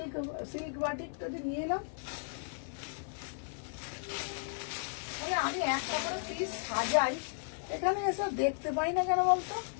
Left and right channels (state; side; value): silent; right; 55 dB below the other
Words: সিল্ক বাটিকটা যে নিয়ে এলাম, আমি একটা করে পিস সাজাই, এখানে এসব দেখতে পাই না কেন বলতো?